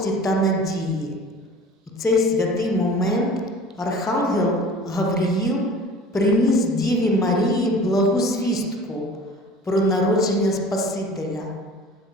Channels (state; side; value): normal; both; correlation 0.43